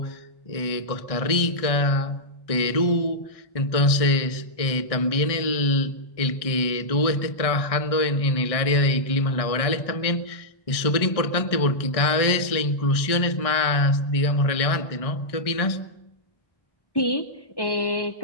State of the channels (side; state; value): right; late; 1.6 ms